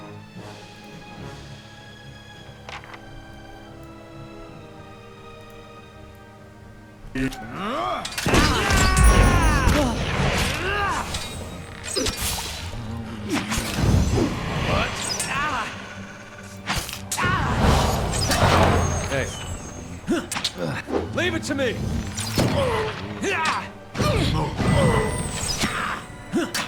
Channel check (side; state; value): both; identical; correlation 1.00